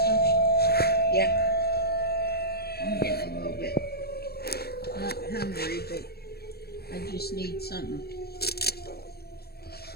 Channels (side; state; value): right; late; 0.46 ms